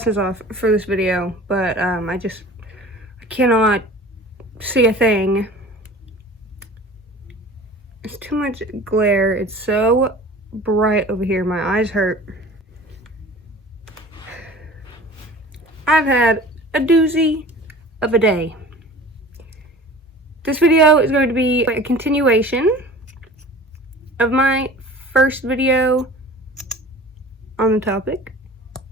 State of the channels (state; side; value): normal; both; correlation 0.42